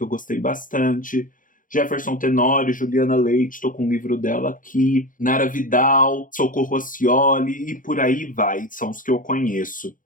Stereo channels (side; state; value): right; late; 0.39 ms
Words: eu gostei bastante. Jefferson Tenório, Juliana Leite, estou com um livro dela aqui. Nara Vidal, Socorro Oscioli e por aí vai, são os que eu conheço.